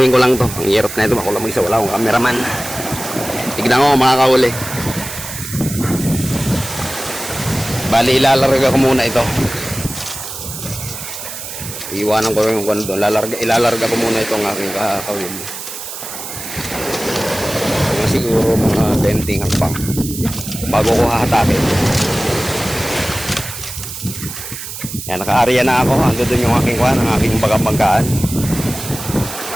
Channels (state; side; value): noise; right; hiss, 9 dB below the sound